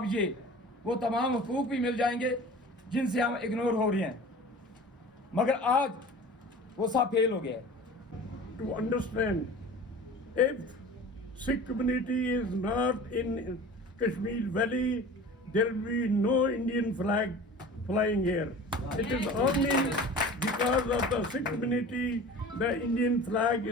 ये वो तमाम हकूक भी मिल जाएंगे जिनसे हम इग्नोर हो रहे हैं, मगर आज वो सब फेल हो गया है। To understand, if Sikh community is not in Kashmir Valley, there will be no Indian flag flying here. It is only because of the Sikh community the Indian flag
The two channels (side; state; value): both; normal; correlation 0.39